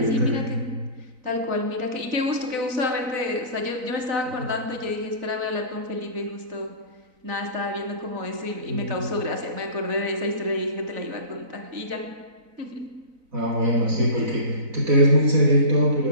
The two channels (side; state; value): left; late; 4.0 ms